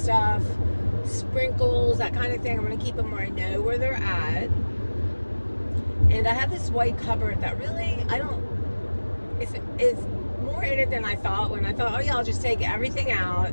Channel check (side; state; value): both; inverted; correlation -1.00